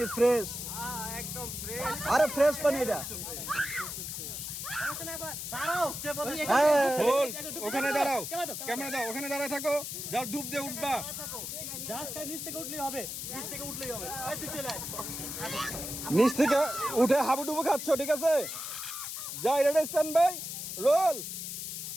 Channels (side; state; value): left; noise; hiss, 6 dB below the sound